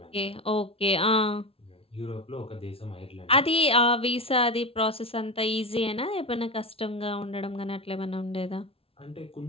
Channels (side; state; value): right; late; 0.27 ms